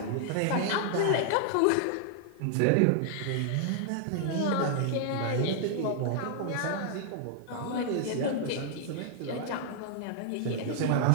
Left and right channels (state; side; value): different; both; correlation 0.00